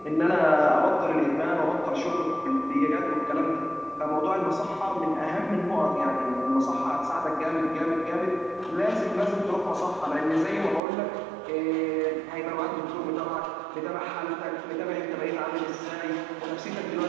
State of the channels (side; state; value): left; drops out; at 10.8 s